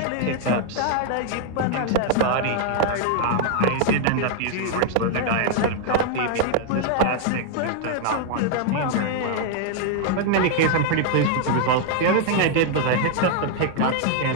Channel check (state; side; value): different; both; correlation 0.00